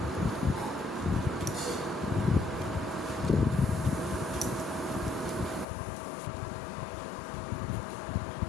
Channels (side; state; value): right; drops out; at 5.7 s